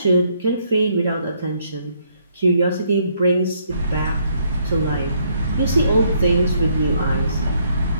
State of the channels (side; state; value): both; inverted; correlation -0.70